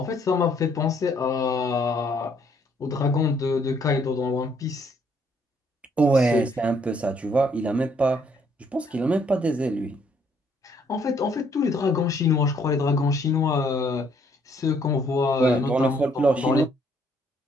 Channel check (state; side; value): normal; both; correlation 0.67